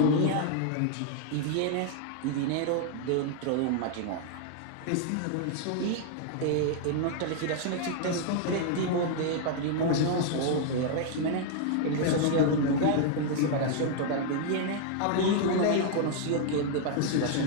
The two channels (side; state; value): both; different; correlation 0.00